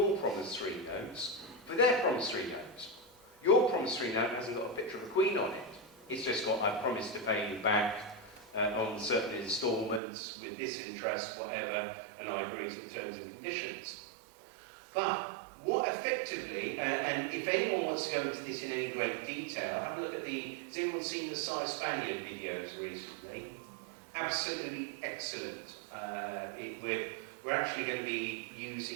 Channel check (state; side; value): drops out; left; at 10.0 s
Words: promissory notes for their promissory notes. Your promissory note hasn't got a picture of a queen on it. It's just got, I promise to pay you back on certain instalments with this interest, whatever, and I agree to the terms and conditions. But what effectively, and if anyone wants to go into this in any great detail, have a look at has anyone seen the Cy Spaniard videos recently? Absolutely excellent. We're actually going to be